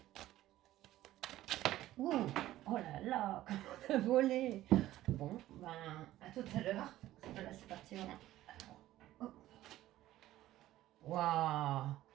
Ouh, oh là là, comment on a volé. Bon, ben, à tout à l'heure. Là, c'est parti. Waouh.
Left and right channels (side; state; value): left; quieter; 14.7 dB